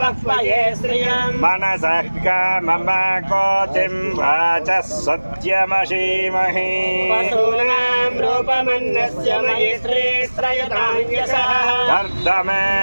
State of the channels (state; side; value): inverted; both; correlation -1.00